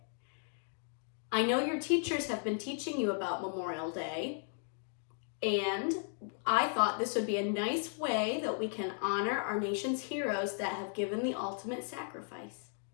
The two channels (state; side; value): silent; right; 54 dB below the other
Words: I know your teachers have been teaching you about Memorial Day, and I thought this would be a nice way that we can honor our nation's heroes that have given the ultimate sacrifice.